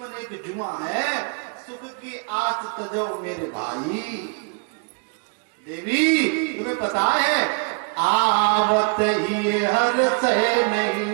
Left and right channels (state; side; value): quieter; left; 38.5 dB